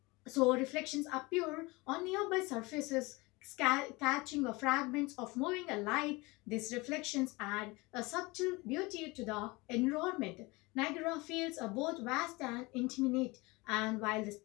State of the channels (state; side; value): quieter; right; 23.9 dB